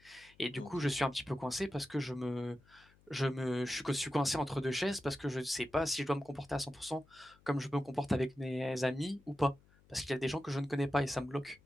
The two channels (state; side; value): noise; left; hum, 29 dB below the sound